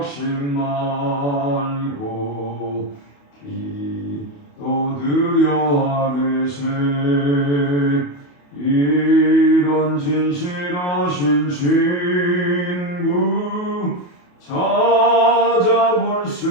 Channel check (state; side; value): late; right; 28 ms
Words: 말고 기도 드려 하게세. 이런 진실하신 친구 찾아볼 수